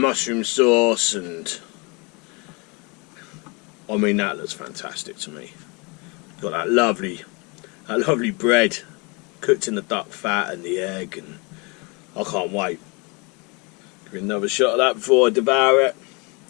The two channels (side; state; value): right; quieter; 29.5 dB